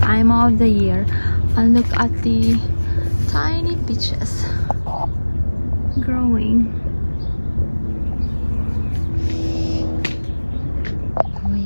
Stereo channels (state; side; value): inverted; both; correlation -1.00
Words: time of the year. And look at the tiny peaches growing. We